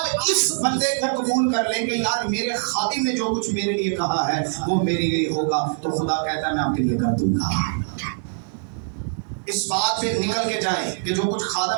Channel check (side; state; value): left; silent; 63 dB below the other